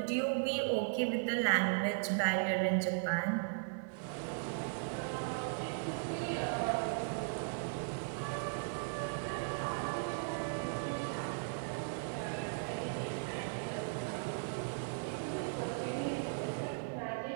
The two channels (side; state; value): left; silent; digital silence